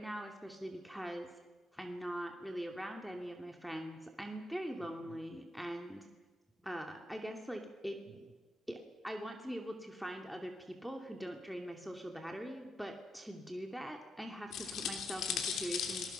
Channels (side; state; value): both; normal; correlation 0.83